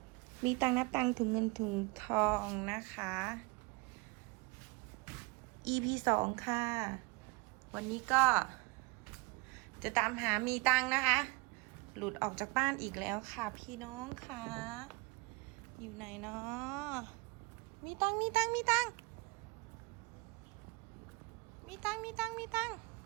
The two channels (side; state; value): left; quieter; 28.0 dB